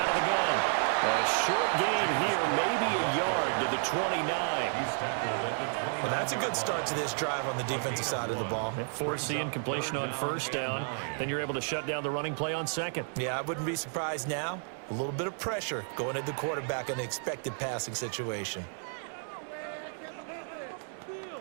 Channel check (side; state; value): left; silent; 57 dB below the other